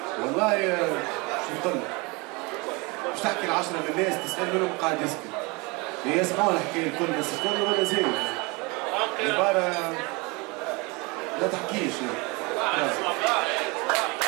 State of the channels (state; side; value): quieter; left; 27.2 dB